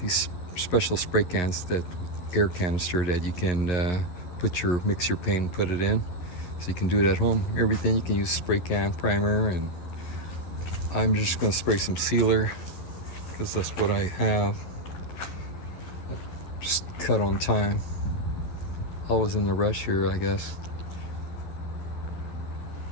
these special spray cans, that air canister that you can mix your paint and put it in. So you can do it at home. Everything you can use spray can, primer, and I'm just gonna spray some sealer because that's what I have. Just cut on time. Always in the rush here, I guess.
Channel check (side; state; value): right; late; 11 ms